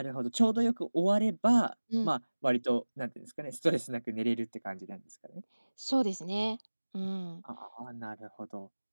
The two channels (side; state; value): both; inverted; correlation -1.00